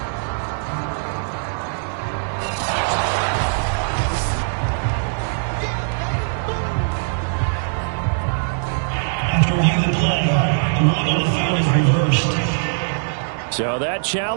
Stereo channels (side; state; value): left; silent; digital silence